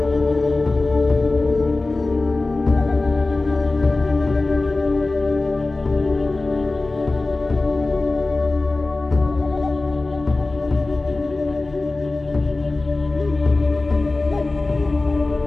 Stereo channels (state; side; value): quieter; right; 3.2 dB